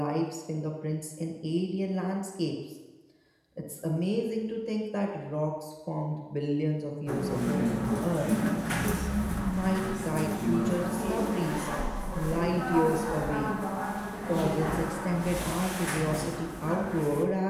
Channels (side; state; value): both; identical; correlation 1.00